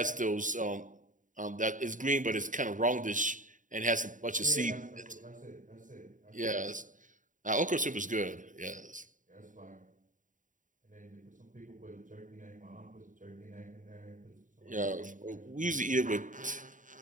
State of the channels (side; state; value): left; late; 0.38 ms